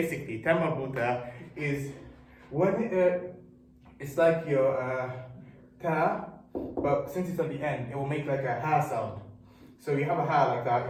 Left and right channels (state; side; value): identical; both; correlation 1.00